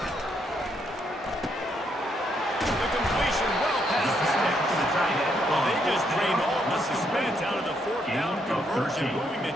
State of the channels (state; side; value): normal; both; correlation 0.75